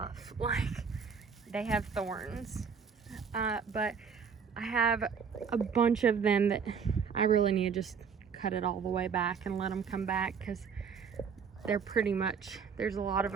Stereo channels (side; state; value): left; quieter; 6.4 dB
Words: Like, they have thorns. But I have a bunch of them that I really need to just cut it all the way back and let them come back, because they're pretty much, there's a lot of